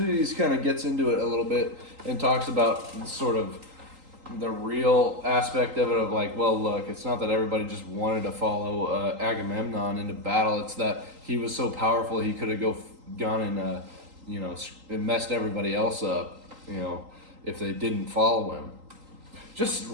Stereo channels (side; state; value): left; late; 3.8 ms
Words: kind of gets into it a little bit and talks about sort of the real aspect of it of like, well, look, it's not that everybody just wanted to follow Agamemnon into battle. It's that he was so powerful he could have gone and and messed everybody else up, if they didn't follow him. Just